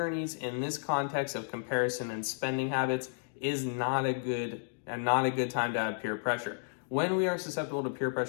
in this context of comparison and spending habits is not a good time to have peer pressure. When we are susceptible to peer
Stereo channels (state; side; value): silent; right; digital silence